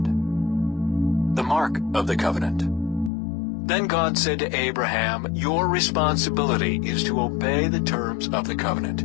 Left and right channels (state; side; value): drops out; right; at 3.1 s